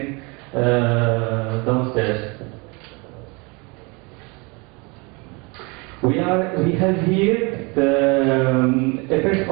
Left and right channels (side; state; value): left; quieter; 28.8 dB